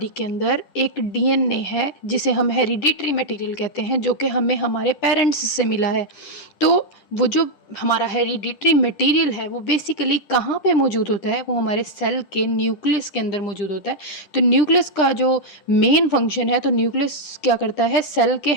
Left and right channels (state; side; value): late; right; 10 ms